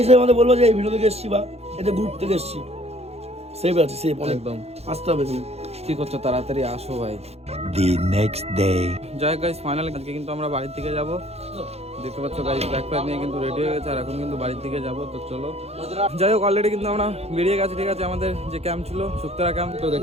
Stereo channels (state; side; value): late; left; 0.30 ms